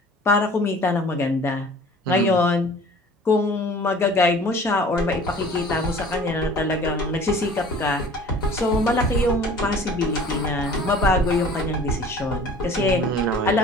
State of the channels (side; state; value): both; normal; correlation 0.47